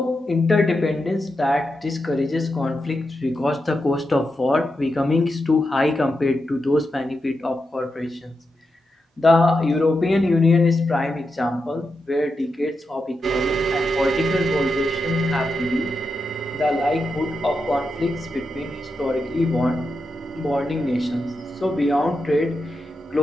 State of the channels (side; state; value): both; normal; correlation 0.87